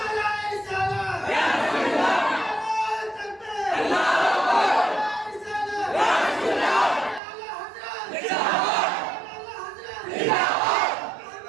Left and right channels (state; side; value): drops out; left; at 7.2 s